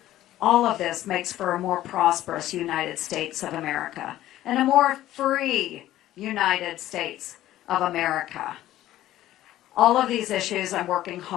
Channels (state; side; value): quieter; right; 14.1 dB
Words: All of this makes for a more prosperous United States of America and a more free United States of America. All of these issues I'm working